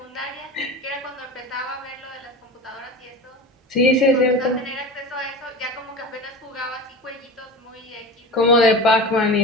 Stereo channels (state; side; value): normal; both; correlation 0.31